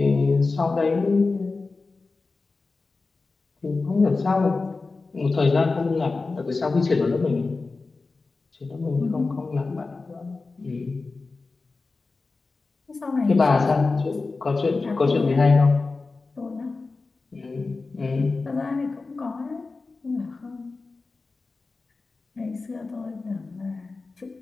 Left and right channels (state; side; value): quieter; right; 3.9 dB